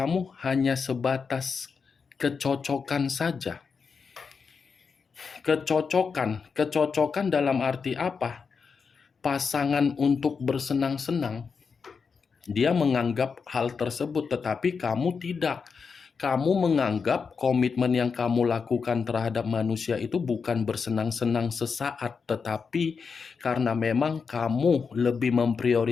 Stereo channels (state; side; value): quieter; right; 5.5 dB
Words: hanya sebatas kecocokan saja. Kecocokan dalam arti apa? Pasangan untuk bersenang-senang. Dia menganggap hal tersebut, tetapi kamu tidak. Kamu menganggap komitmen yang kamu lakukan terhadap manusia itu bukan bersenang-senang sesaat, tetapi karena memang kamu lebih